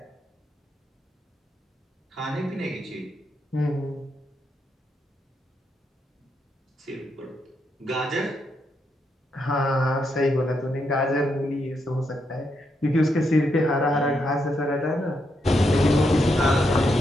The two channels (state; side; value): normal; both; correlation 0.80